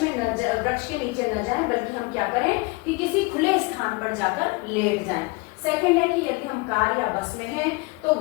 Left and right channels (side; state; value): right; quieter; 26.1 dB